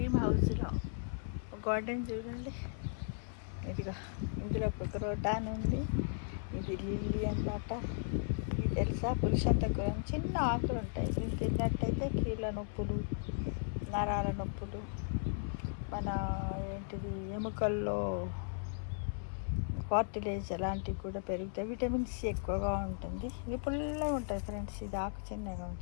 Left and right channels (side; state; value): right; silent; 54 dB below the other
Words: హౌస్లో గార్డెన్ చూడండి. ఇదిగా ఇందులో కుదరోటాన్ ఉంది. ఇది లిల్లీ అన్నమాట. ఇది తెలుసా, పురుషంతకురం చిన్న ఆకులు ఉంటాయి. ఇది తిన్నట్టయితే కీళ్ళ నొప్పులు, నరాల నొప్పులు, మన ఏంటిది ఎముకల్లో కార్టిలేజ్ అలాంటివి కూడా పెరుగుతాయి. విటమిన్ సి ఎక్కువగా ఉంటుంది. ఇది పుల్లగా ఉంటుంది ఫ్రెండ్స్. ఇది ఆకు చిన్నగా